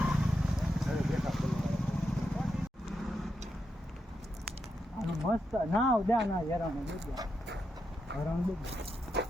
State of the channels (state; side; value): normal; both; correlation 0.84